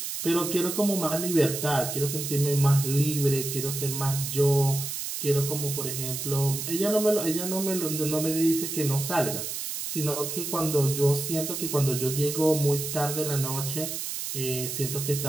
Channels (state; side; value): noise; right; hiss, 5 dB below the sound